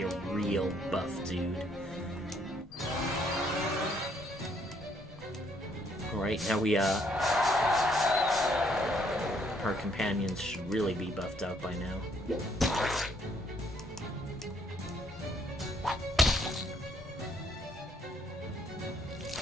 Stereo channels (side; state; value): both; normal; correlation 0.68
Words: a real buff dude. Alright, now we, our companions should really be buffed out by now.